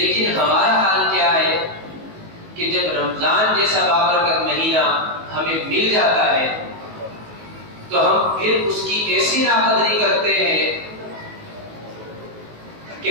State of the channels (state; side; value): late; left; 19 ms